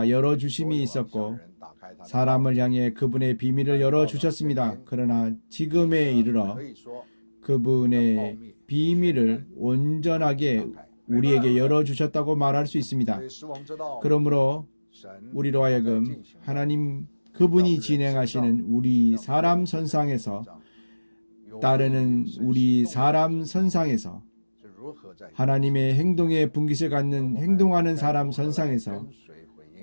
열어주심이 있었고 사람을 향해 그분의 비밀을 열어주셨습니다. 그러나 지금에 이르러 그분의 비밀을 온전하게 우리에게 열어주셨다고 말할 수 있습니다. 그러므로 우리로 하여금 하나님 그분이 진행하시는 우리 사람 선상에서 따르는 우리 사람 선상에서 하나님의 행동에 분깃을 갖는 행동하는 사람 선상에서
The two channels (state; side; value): inverted; both; correlation -1.00